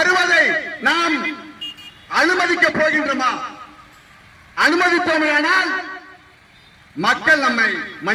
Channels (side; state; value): both; identical; correlation 1.00